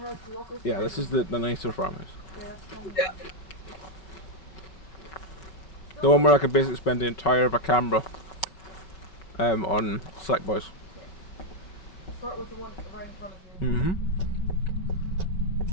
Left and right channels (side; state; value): right; late; 5.3 ms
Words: lockers. Yeah, this is the nicer farmhouse. Yeah, that's fine. Yeah. The one where I could basically spend the entire of a camera on Slackboys. Start with the one right in front of you. Mm-hmm.